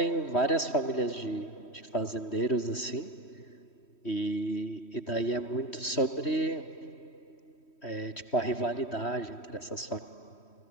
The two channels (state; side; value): late; right; 3.1 ms